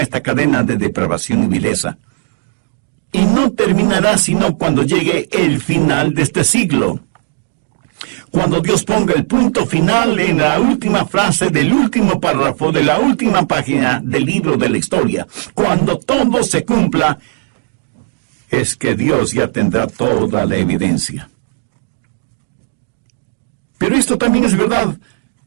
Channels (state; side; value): silent; left; digital silence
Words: esta cadena de depravación y vileza. Y no terminará sino cuando llegue el final de este siglo. Cuando Dios ponga el punto final en la última frase del último párrafo de la última página del libro de la historia, cuando todo se cumpla, es que Dios ya tendrá toda la evidencia. Pero esto también es verdad